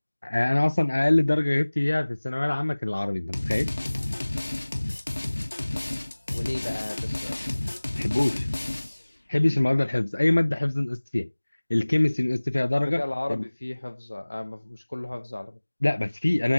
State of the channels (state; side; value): inverted; both; correlation -1.00